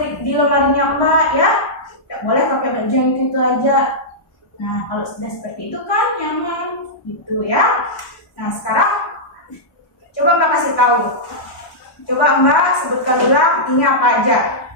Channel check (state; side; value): late; right; 1.1 ms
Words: di lemarinya Mbak ya. Tidak boleh pakai baju yang itu aja. Nah, kalau sudah seperti itu kan nyaman gitu ya. Nah, sekarang coba Mbak kasih tahu. Coba Mbak sebutkan ulang ini apa aja.